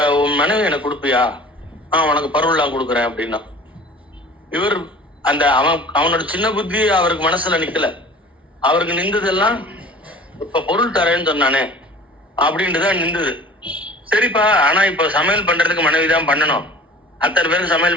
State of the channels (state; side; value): normal; both; correlation 0.44